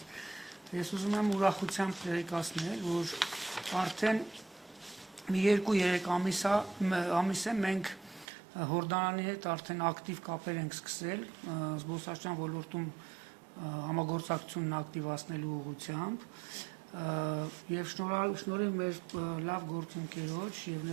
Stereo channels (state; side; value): drops out; left; at 8.2 s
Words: Ես ուզում եմ ուրախությամբ տեղեկացնել, որ արդեն մի 2-3 ամիս է մենք Հորդանանի հետ արդեն ակտիվ կապեր ենք սկսել զբոսաշրջության ոլորտում համագործակցությունն ակտիվացնելու ուղղությամբ եւ շնորհիվ մեր լավ գործընկերոջ եւ